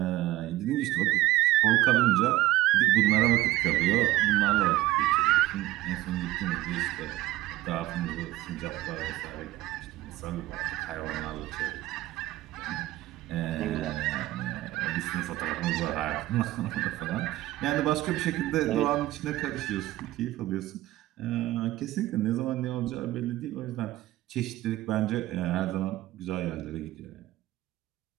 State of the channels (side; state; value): left; quieter; 16.3 dB